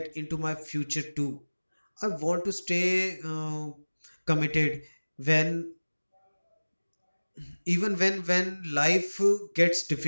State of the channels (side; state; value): both; inverted; correlation -1.00